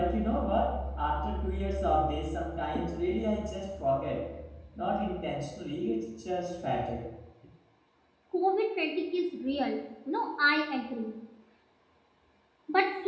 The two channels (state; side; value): identical; both; correlation 1.00